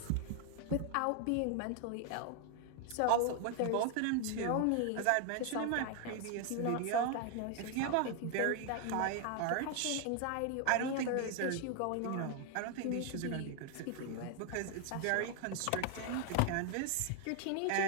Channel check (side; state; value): both; different; correlation 0.00